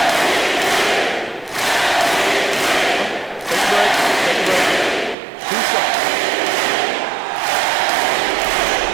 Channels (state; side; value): drops out; left; at 5.2 s